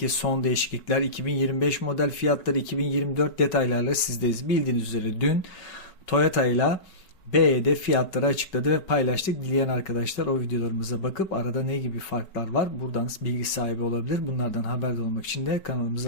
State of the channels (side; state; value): right; late; 5.3 ms